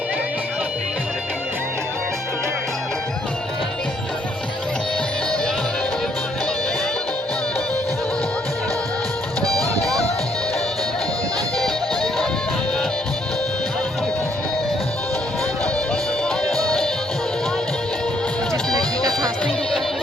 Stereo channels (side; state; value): both; normal; correlation 0.69